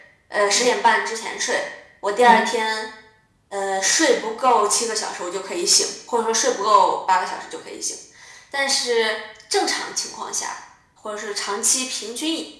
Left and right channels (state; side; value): identical; both; correlation 1.00